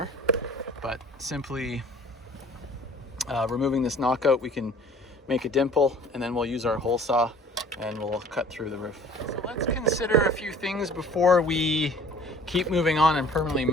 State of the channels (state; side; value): normal; both; correlation 0.50